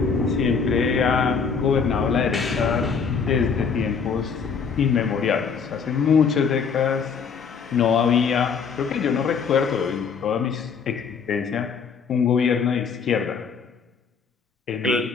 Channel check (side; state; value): right; quieter; 5.9 dB